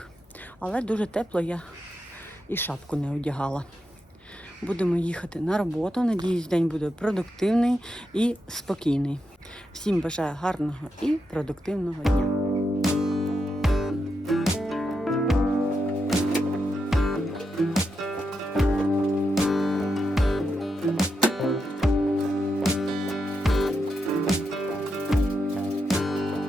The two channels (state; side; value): normal; both; correlation 0.85